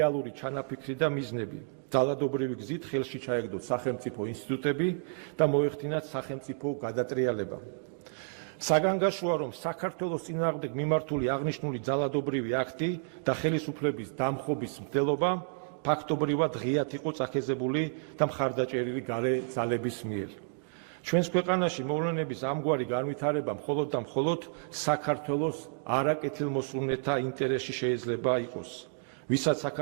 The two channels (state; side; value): silent; left; digital silence